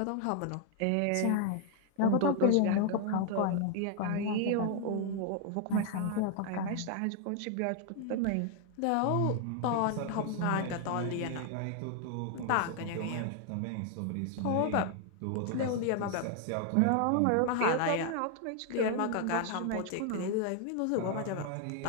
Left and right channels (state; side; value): different; both; correlation 0.00